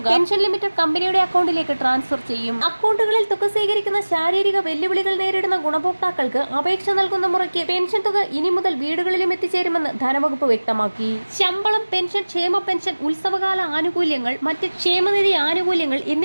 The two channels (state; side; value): inverted; both; correlation -1.00